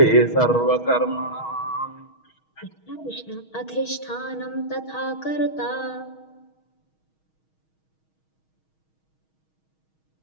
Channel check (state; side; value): late; right; 6.3 ms